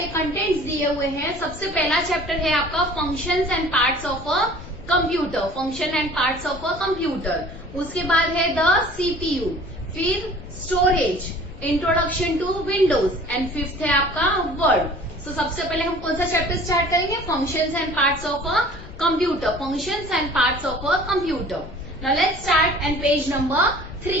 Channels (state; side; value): noise; left; rumble, 15 dB below the sound